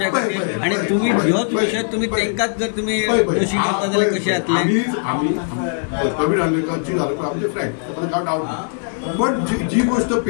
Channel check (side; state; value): right; silent; digital silence